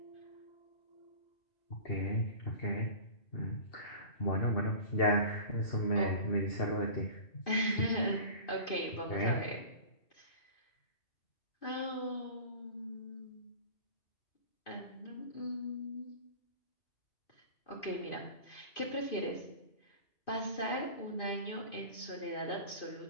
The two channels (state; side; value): late; right; 2.5 ms